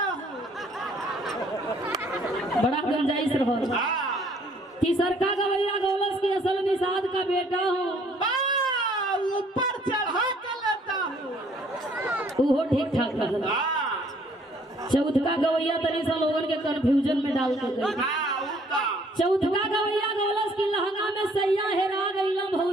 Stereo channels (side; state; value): both; normal; correlation 0.62